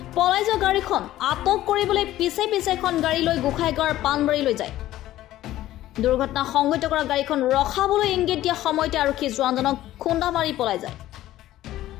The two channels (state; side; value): quieter; right; 14.4 dB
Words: পলাই যোৱা গাড়ীখন আটক কৰিবলৈ পিছে পিছে এখন গাড়ী লৈ গোখাইগাঁৱৰ পানবাৰীলৈ যায় দুৰ্ঘটনা সংঘটিত কৰা গাড়ীখন ৰখাবলৈ ইংগিত দিয়া সময়তে আৰক্ষী জোৱানজনক খুন্দা মাৰি পলাই যায়